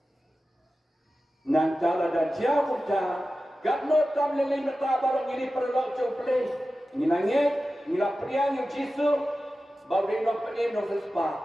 nantala da jauh ta gadno tam lele mata barang ini perlok jo ublay ngilangit ngilapria yang jisu bawin nok penim nok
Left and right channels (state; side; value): normal; both; correlation 0.94